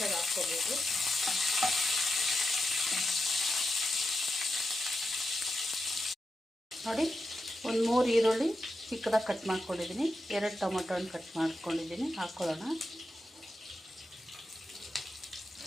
ಹಾಕ್ಕೋಬೋದು. ನೋಡಿ, 1-3 ಈರುಳ್ಳಿ ಚಿಕ್ಕದಾಗಿ ಕಟ್ ಮಾಡ್ಕೊಂಡಿದ್ದೀನಿ. 2 ಟೊಮೊಟೊ ಹಣ್ಣು ಕಟ್ ಮಾಡ್ಕೊಂಡಿದ್ದೀನಿ. ಹಾಕ್ಕೊಳ್ಳೋಣ.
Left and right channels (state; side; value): normal; both; correlation 0.88